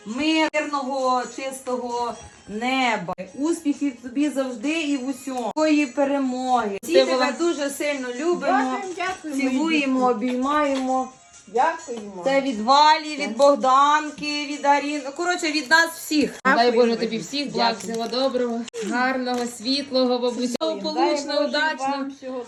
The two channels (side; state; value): both; identical; correlation 1.00